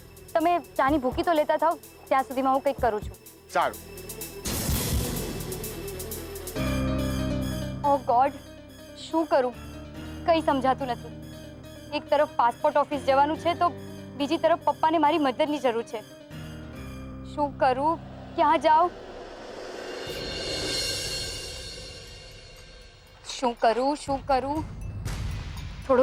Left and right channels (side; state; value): both; identical; correlation 1.00